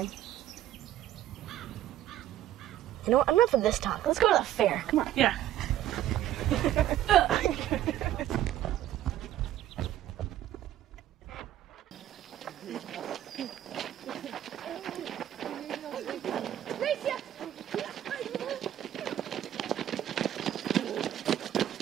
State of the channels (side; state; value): left; quieter; 12.4 dB